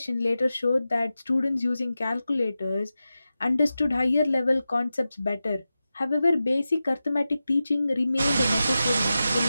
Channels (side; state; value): both; inverted; correlation -0.93